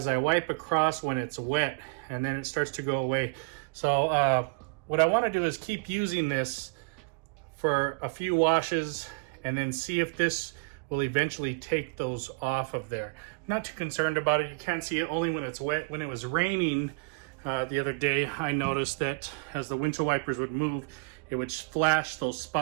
I wipe across when it's wet, and then it starts to go away. So what I want to do is keep using this for a few washes and then see if this will eventually take those off of there. I'm not too concerned about it. You can't see it only when it's wet. When it was raining the other day, I noticed that as the windshield wipers would move, it would flash those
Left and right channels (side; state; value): left; quieter; 33.0 dB